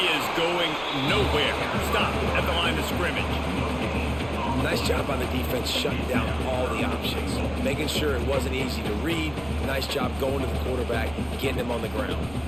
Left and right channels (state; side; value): noise; right; rumble, 18 dB below the sound